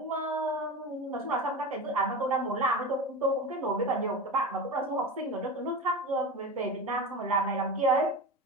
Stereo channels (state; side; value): normal; both; correlation 0.26